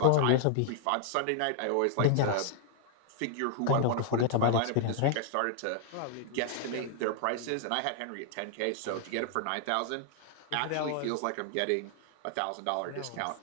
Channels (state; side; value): different; both; correlation -0.01